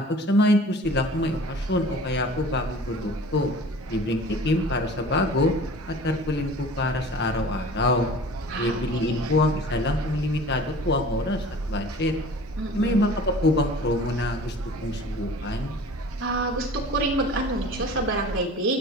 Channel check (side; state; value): both; normal; correlation 0.44